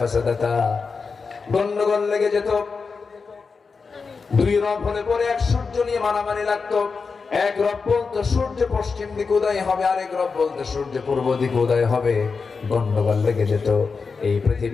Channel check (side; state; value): right; quieter; 4.9 dB